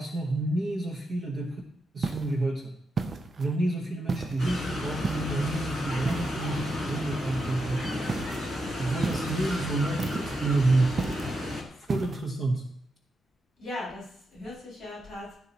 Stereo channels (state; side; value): normal; both; correlation 0.85